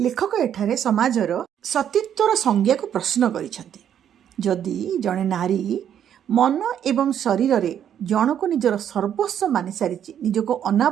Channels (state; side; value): quieter; left; 9.5 dB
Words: एठारे समाजर सतीत्वर संज्ञा को प्रश्न करिसंती। जदि जड़े नारी ମନ ଏବଂ ଶରୀରରେ ଜଣକୁ ନିଜର ସର୍ବସ୍ୱ ମାନି ସାରିଛି, ନିଜକୁ